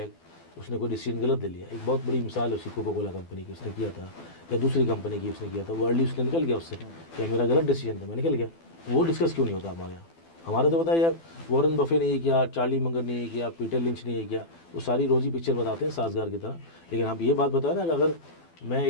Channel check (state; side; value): late; right; 12 ms